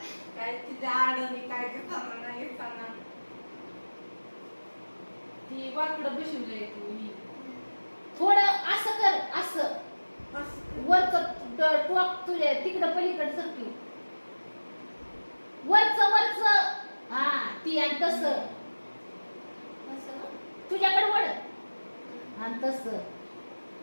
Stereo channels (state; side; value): inverted; both; correlation -1.00